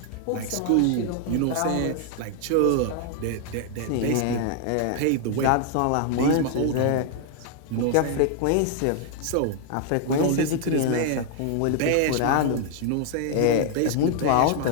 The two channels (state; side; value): different; both; correlation 0.00